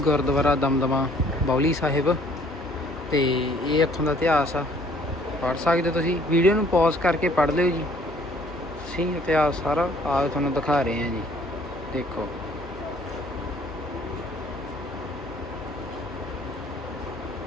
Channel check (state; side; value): normal; both; correlation 0.59